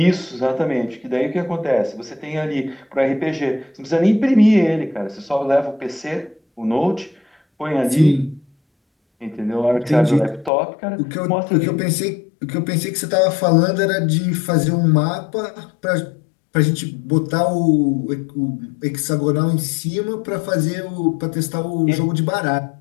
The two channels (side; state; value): right; drops out; at 10.5 s